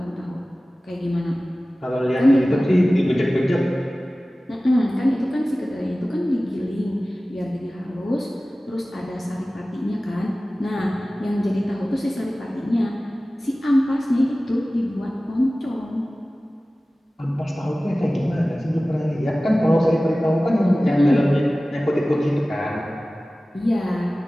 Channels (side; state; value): both; normal; correlation 0.97